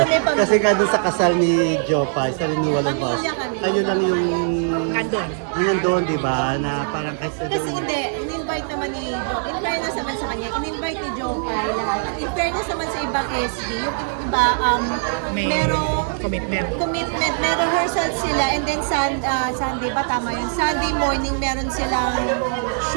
pamilya. Kasi nga doon sa kasal ni Jopa, sa renewal of vows, Pamilya kami. kayo lang yung Nandun. nandun, di ba? Na parang kasi Kasi hindi, in-invite naman ni Joe. In fairness naman sa kanya, in-invite ni Joe Pai lahat. At in fairness naman sa ibang SB, yung iba, May merong commitment. may rehearsal sila and then Sunday ba tama yun? Sunday morning meron silang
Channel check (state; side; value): silent; left; digital silence